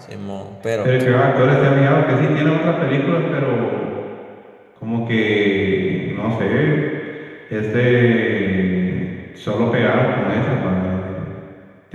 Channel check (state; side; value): identical; both; correlation 1.00